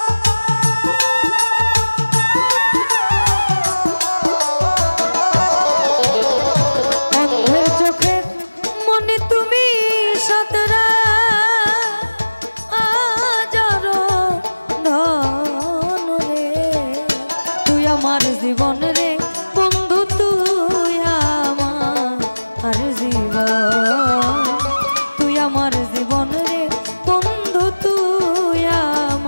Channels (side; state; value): both; inverted; correlation -1.00